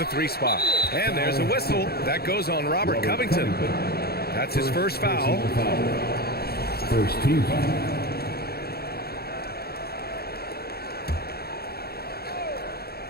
3 spot. And there's a whistle. That goes on Robert Covington. That's his first foul. First team foul.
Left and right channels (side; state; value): right; late; 0.46 ms